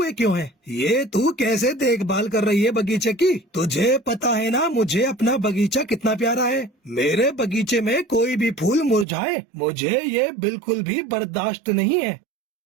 क्यों हैं? ये तू कैसे देखभाल कर रही है बगीचे की? तुझे पता है ना मुझे अपना बगीचा कितना प्यारा है। मेरे बगीचे में कोई भी फूल मुरझाए मुझे ये बिल्कुल भी बर्दाश्त नहीं है।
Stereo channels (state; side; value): drops out; left; at 9.1 s